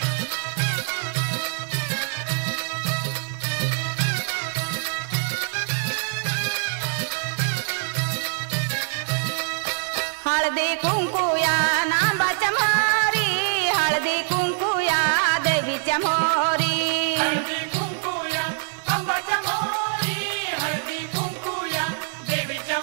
हळदी कुंकुया नांबाच्या मोरी, हळदी कुंकुया देवीच्या मोरी, हळदी कुंकुया अंबाच्या मोरी, हळदी कुंकुया देवीच्या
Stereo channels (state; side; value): silent; left; 62 dB below the other